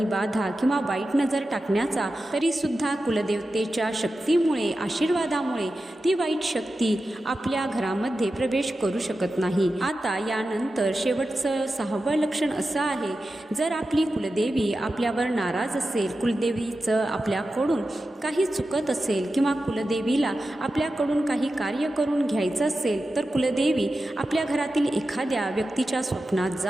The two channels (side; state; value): both; normal; correlation 0.92